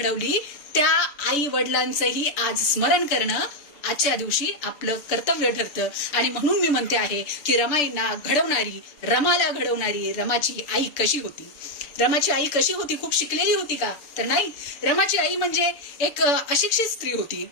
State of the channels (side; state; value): right; late; 6.8 ms